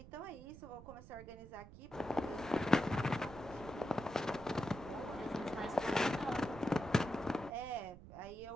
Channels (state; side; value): noise; right; rumble, 16 dB below the sound